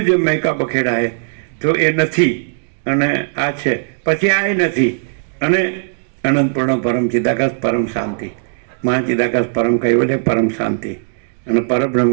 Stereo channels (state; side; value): silent; left; digital silence